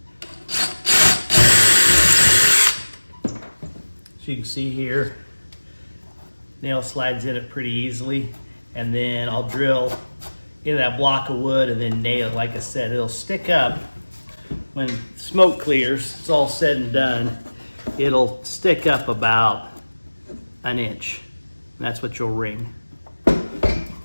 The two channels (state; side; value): inverted; both; correlation -1.00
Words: So you can see here, nail slides in it pretty easily, and then I'll drill into that block of wood and then nail it. Like I said, it'll stick up when smoke clears. It's all said and done. It'll stick up about an inch. And that's what you'll ring.